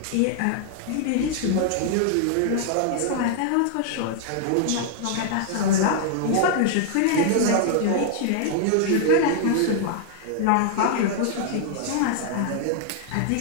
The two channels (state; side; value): different; both; correlation -0.01